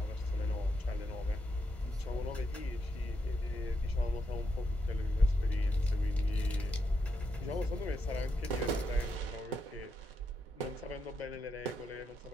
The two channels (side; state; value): both; normal; correlation 0.82